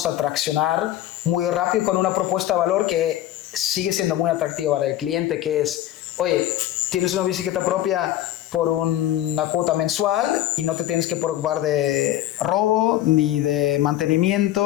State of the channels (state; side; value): quieter; right; 13.3 dB